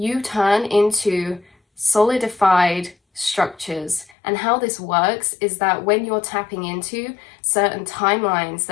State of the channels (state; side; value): drops out; right; at 4.2 s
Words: turn into solidified structures. And how this works is that when you're tapping into certain timelines,